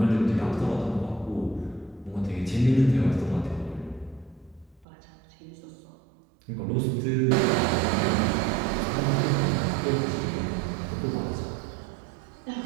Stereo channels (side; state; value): left; drops out; at 4.9 s